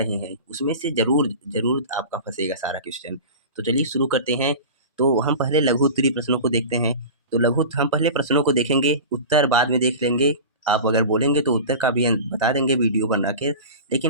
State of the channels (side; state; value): both; inverted; correlation -0.32